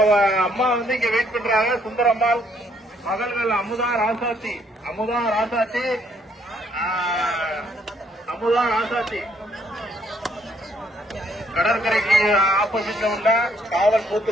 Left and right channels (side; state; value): both; normal; correlation 0.68